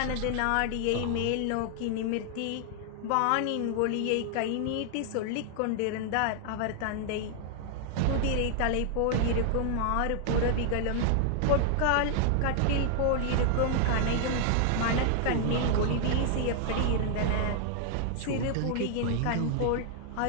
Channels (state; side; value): different; both; correlation 0.00